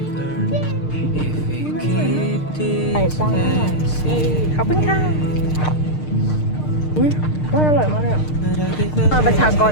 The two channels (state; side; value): late; right; 6.6 ms